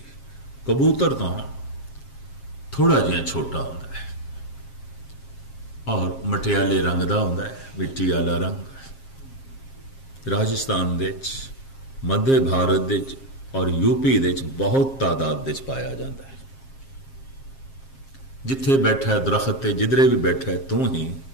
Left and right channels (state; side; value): late; right; 7.5 ms